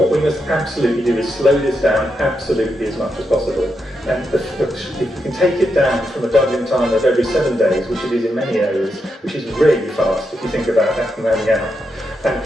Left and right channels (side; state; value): both; normal; correlation 0.84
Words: we must absolutely do is slow this down absolutely as much as possible. And if you can take it down from a Dublin time of every 7 days, which it is in many areas, which is really fast if you think about that from rounding out, and